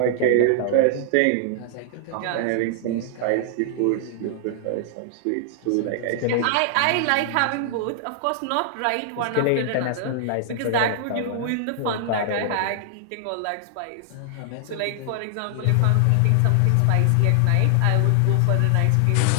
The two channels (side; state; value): both; different; correlation 0.00